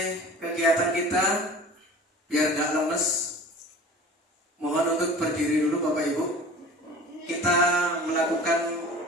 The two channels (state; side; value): normal; both; correlation 0.41